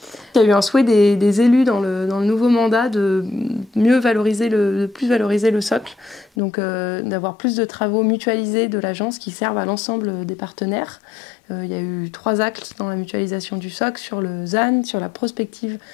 Il y a eu un souhait des élus dans le nouveau mandat de plus valoriser le socle, donc d'avoir plus de travaux mutualisés de l'agence qui servent à l'ensemble des partenaires. Il y a eu 3 actes dans la mutualisation du socle, sur le ZAN, sur la prospective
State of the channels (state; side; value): drops out; right; at 6.3 s